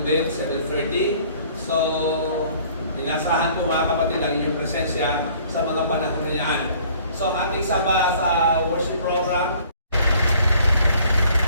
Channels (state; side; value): inverted; both; correlation -0.56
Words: din, 7:30. So, dinasahan po mga kapatid ang inyong presensya sa mga panahon na yan. So, ating saba sa worship program.